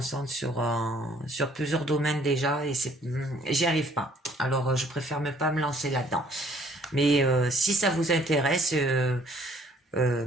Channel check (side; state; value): both; normal; correlation 0.60